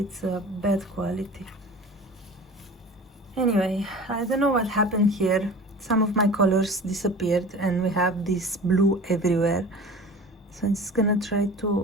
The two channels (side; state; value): both; normal; correlation 0.39